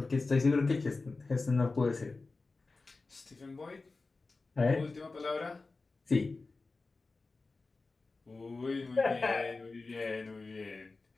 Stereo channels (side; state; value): right; quieter; 3.7 dB